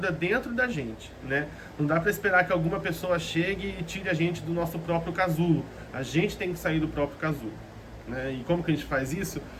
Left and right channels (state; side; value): identical; both; correlation 1.00